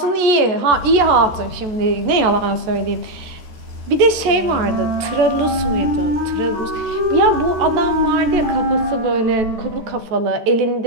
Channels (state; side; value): late; left; 14 ms